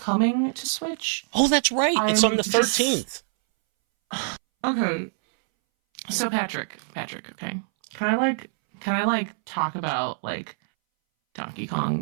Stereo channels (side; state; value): left; silent; 61 dB below the other